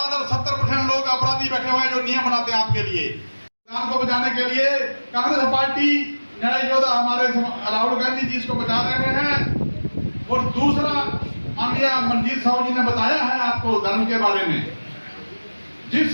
70% लोग अपराधी बैठे हुए हैं जो नियम बनाते हैं आपके लिए। संविधान को बचाने के लिए कांग्रेस पार्टी, न्याय योद्धा हमारे राहुल गांधी जी इसको बचा रहे हैं। और दूसरा, माननीय मंजीत साहू जी ने बताया है आपको धर्म के बारे में। जिस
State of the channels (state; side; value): inverted; both; correlation -1.00